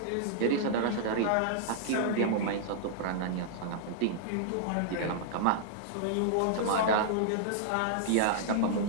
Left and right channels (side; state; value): both; different; correlation -0.01